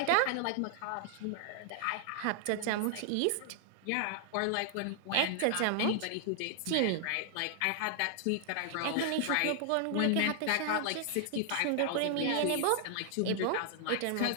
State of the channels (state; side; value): different; both; correlation 0.00